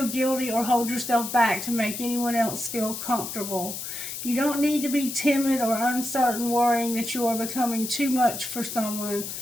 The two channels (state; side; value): noise; left; hiss, 7 dB below the sound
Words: guilty or hold yourself back to make anyone else feel comfortable. You don't need to be timid or uncertain, worrying that you are becoming too much for someone